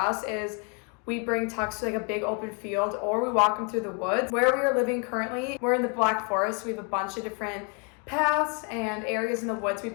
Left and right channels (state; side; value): quieter; right; 36.7 dB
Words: is we bring Tux to like a big open field, or we walk him through the woods. Where we are living currently, we're in the Black Forest. We have a bunch of different paths and areas in the woods we